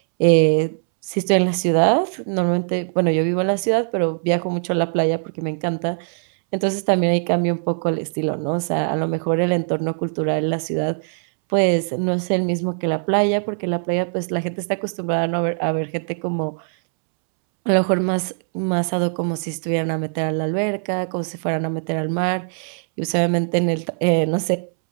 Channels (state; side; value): silent; left; 65 dB below the other